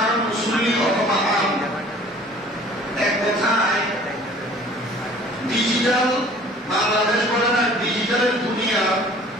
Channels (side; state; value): both; normal; correlation 0.50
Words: মুসলিম অথবা আম, এক কথায় ডিজিটাল বাংলাদেশ বলে না, ডিজিটালের দুনিয়া